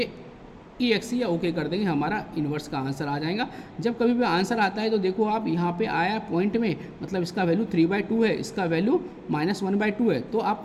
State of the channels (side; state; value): both; identical; correlation 1.00